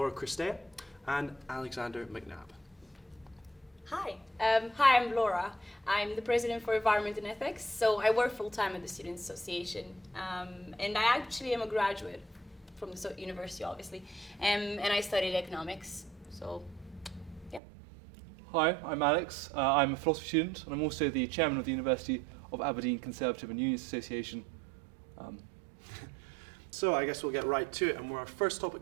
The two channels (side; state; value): left; drops out; at 17.6 s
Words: Christea and Alexander McNabb. Hi, I'm Laura. I'm the president for Environment and Ethics, so I work full-time at the Students' Association, and I actually am a graduate from the university, obviously, and I studied economics, so, yeah. Hi, I'm Alex. I'm a philosophy student, and I'm also the chairman of the University of Aberdeen Conservative and Unionist Association. So I guess we'll get right to it, and our first